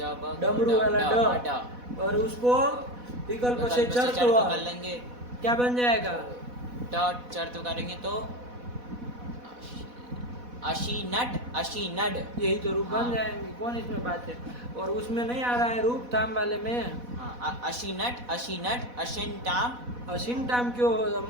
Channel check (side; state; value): left; late; 4.1 ms